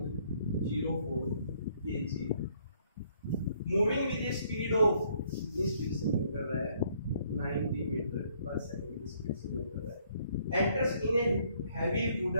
kg, moving with A speed of, कितनी स्पीड से मूव कर रहा है, 90 मीटर पर सेकंड की स्पीड से मूव कर रहा है। Enters in a heavy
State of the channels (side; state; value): both; inverted; correlation -0.66